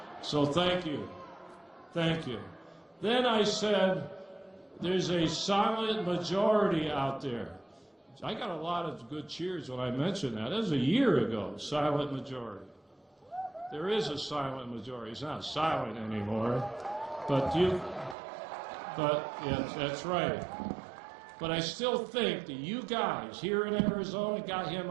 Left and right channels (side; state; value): left; drops out; at 18.2 s